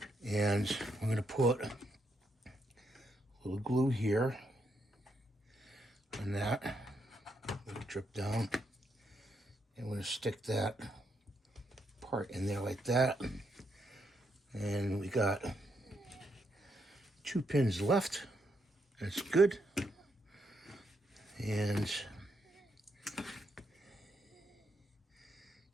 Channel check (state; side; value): normal; both; correlation 0.78